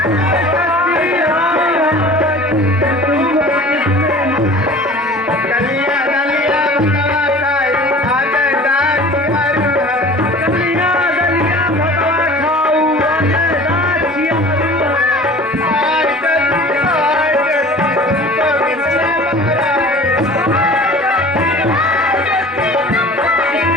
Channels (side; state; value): both; normal; correlation 0.43